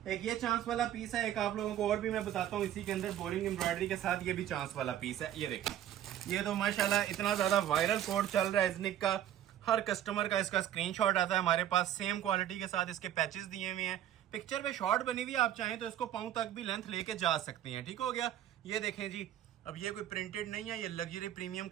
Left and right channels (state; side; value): quieter; left; 11.5 dB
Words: एक ये चांस वाला पीस है, एक आप लोगों को और भी मैं बताता हूँ इसी के अंदर बोरिंग एम्ब्रॉयडरी के साथ, ये भी चांस वाला पीस है। ये देखिए, ये तो माशाल्लाह इतना ज्यादा वायरल कोड चल रहा है इज़निक का, हर कस्टमर का इसका स्क्रीनशॉट आता है हमारे पास। सेम क्वालिटी के साथ इसके पैचेस दिए हुए हैं, पिक्चर पे शॉर्ट बनी हुई, आप चाहें तो इसको पाँव तक भी लेंथ लेके जा सकते हैं, ठीक हो गया। ये देखें जी, अब ये कोई प्रिंटेड नहीं है, ये लग्जरी प्रीमियम